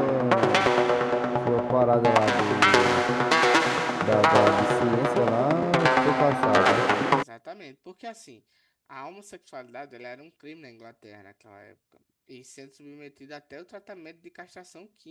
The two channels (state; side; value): identical; both; correlation 1.00